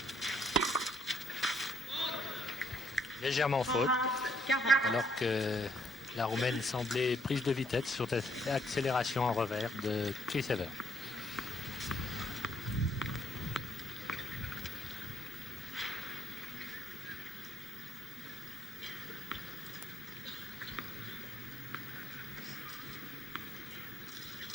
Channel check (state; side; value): normal; both; correlation 0.70